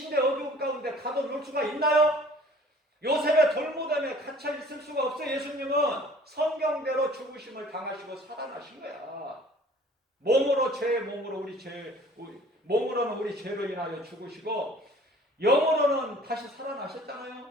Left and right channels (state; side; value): normal; both; correlation 0.51